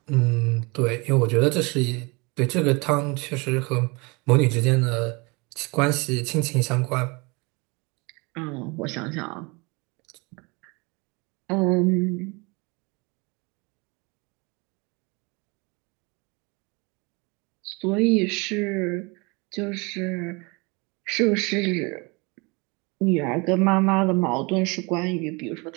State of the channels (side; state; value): left; quieter; 28.1 dB